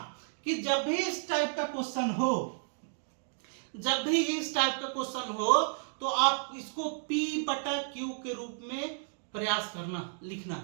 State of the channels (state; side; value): silent; left; digital silence